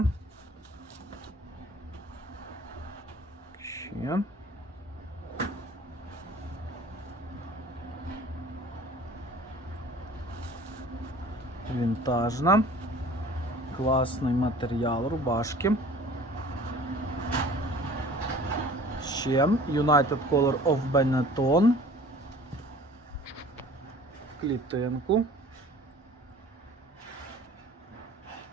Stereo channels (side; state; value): both; normal; correlation 0.47